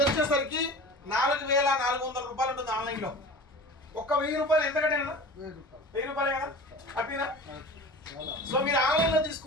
వచ్చేసరికి 4,400 రూపాయలు ఉంటుంది ఆన్లైన్లో. ఒక్క 1000 రూపాయలు ఎంతకంటే 1000 రూపాయలే కదా, హ్యాపీనా? సో మీరు ఆన్లైన్లో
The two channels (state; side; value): normal; both; correlation 0.37